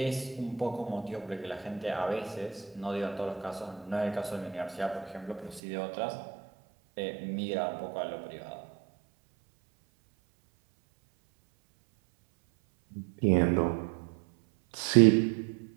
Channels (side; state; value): left; drops out; at 5.6 s